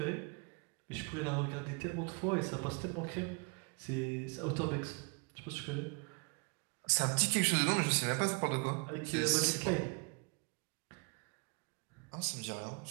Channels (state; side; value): quieter; left; 32.7 dB